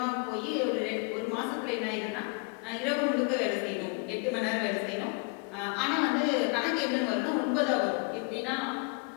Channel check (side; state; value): right; quieter; 33.2 dB